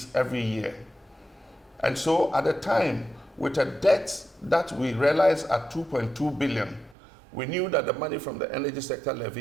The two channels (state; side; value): drops out; left; at 7.0 s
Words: every year. And so at the time, with a debt that we realized at 2.2 billion, we knew that the money from the energy sector